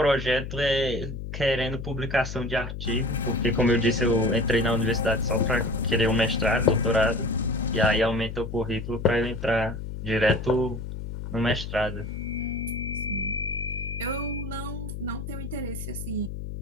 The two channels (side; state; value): left; noise; hum, 7 dB below the sound